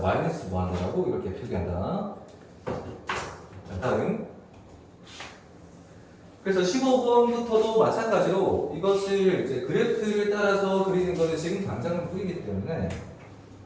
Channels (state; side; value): identical; both; correlation 1.00